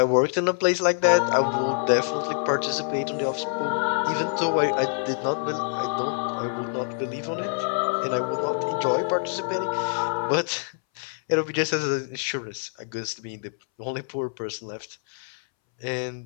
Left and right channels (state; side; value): silent; right; 61 dB below the other